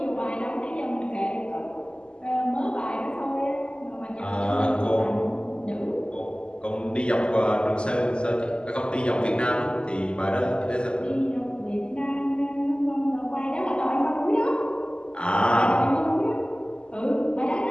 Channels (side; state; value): right; late; 0.050 ms